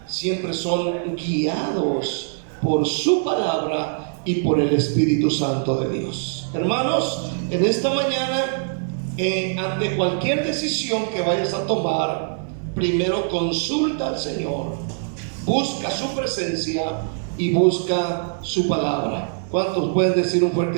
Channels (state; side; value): silent; left; digital silence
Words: siempre son guiados por su palabra y por el Espíritu Santo de Dios. Hermanos, en esta mañana, ante cualquier decisión que vayas a tomar, primero consulta al Señor, busca su presencia y busca su palabra. ¿Cuántos pueden decir un